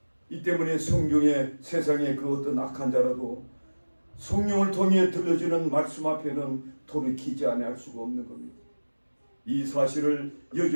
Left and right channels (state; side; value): inverted; both; correlation -1.00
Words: 이 때문에 성경에 세상의 그 어떤 악한 자라도 성령을 통해 들려주는 말씀 앞에는 돌이키지 않을 수가 없는 겁니다. 이 사실을